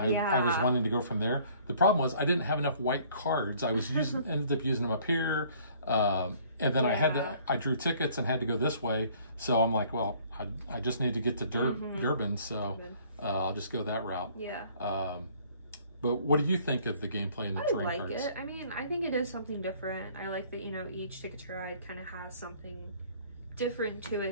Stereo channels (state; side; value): inverted; both; correlation -0.57